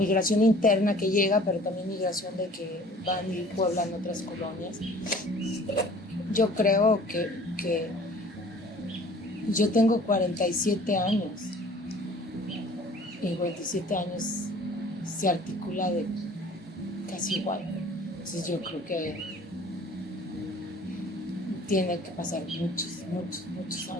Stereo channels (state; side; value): normal; both; correlation 0.50